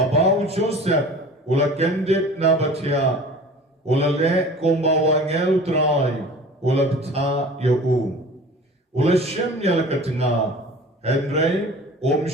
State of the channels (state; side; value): normal; both; correlation 0.42